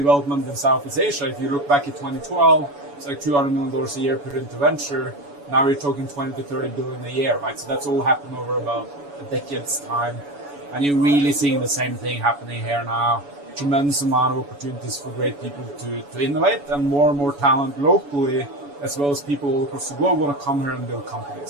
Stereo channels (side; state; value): left; late; 7.0 ms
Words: in Southeast Asia. If you look back at 2012, it's like $200 million a year put into venture. Now we're talking 20 to 30 billion a year, right? So that's all happened over about a decade's time. And you're really seeing the same thing happening here now. Tremendous amount of opportunities for great people to innovate, and more talent locally, as well as people all across the globe want to come here and build